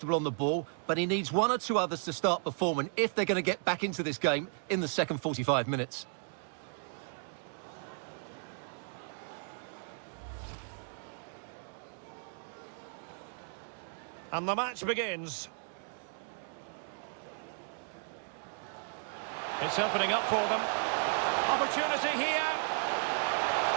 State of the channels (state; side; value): silent; left; 55 dB below the other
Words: on the ball, but he needs one or two others to start performing if they're going to get back into this game in the second 45 minutes. And the match begins. It's opening up for them. Opportunity here.